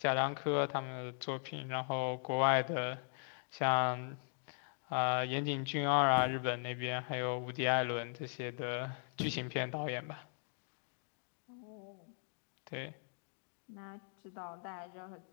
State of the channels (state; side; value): silent; right; 52 dB below the other